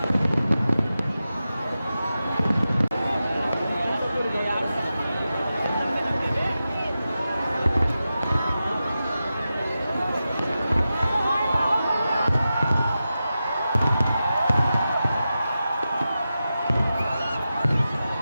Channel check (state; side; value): inverted; both; correlation -0.92